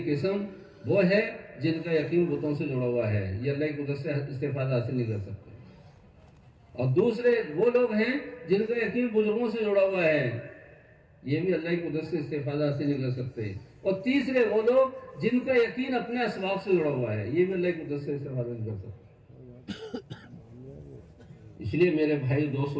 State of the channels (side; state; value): both; identical; correlation 1.00